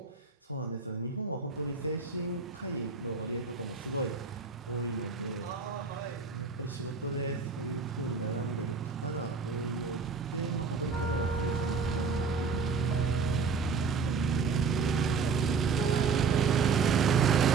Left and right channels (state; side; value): quieter; left; 5.0 dB